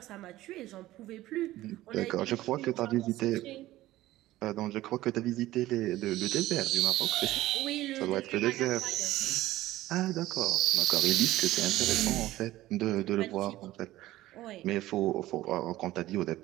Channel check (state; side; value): quieter; left; 16.0 dB